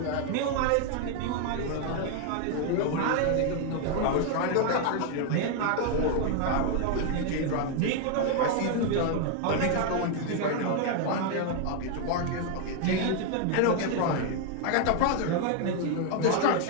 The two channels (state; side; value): different; both; correlation 0.01